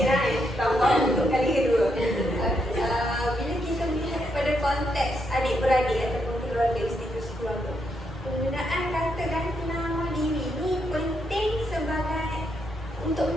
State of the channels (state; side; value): normal; both; correlation 0.79